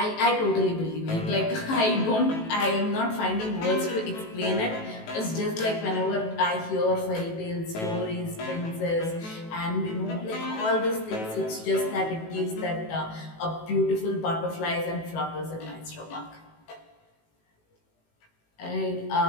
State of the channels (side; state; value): right; late; 18 ms